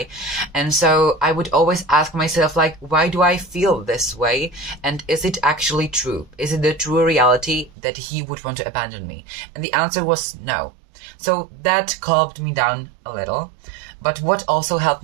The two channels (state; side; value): drops out; left; at 7.7 s